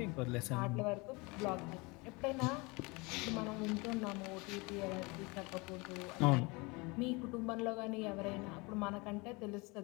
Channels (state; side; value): quieter; right; 26.4 dB